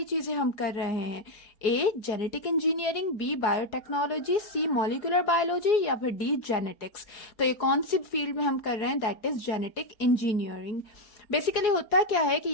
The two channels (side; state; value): right; late; 4.8 ms